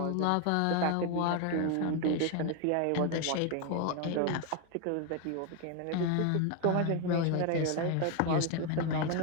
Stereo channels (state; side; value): different; both; correlation 0.01